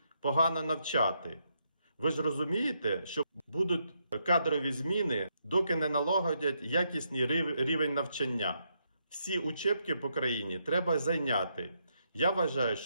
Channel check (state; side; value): inverted; both; correlation -0.78